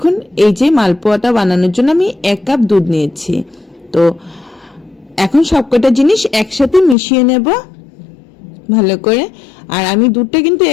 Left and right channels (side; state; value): right; drops out; at 7.0 s